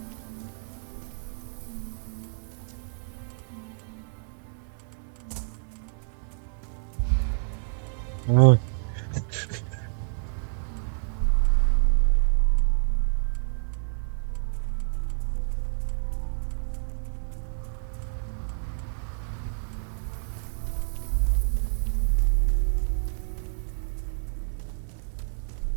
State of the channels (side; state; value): left; silent; 59 dB below the other